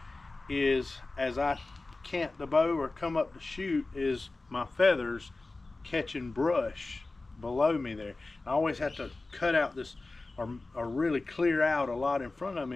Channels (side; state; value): right; quieter; 3.3 dB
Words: is as I cant the bow or come up to shoot, is my feathers catching brush below me there. I always have to cut out this or really clear out a lot in front of